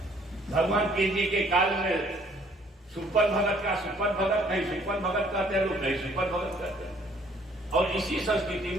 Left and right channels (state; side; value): normal; both; correlation 0.61